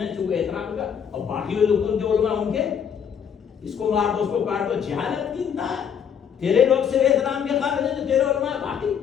چونکہ احترام کا, اور باقی لوگ جو علماء ان کے اس کو مار دو, اس کو کاٹ دو. جہالت کی انتہا. تیرے لوگ سے احترام کے قابل ہیں جو تیرے علماء, باقی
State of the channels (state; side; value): quieter; right; 7.8 dB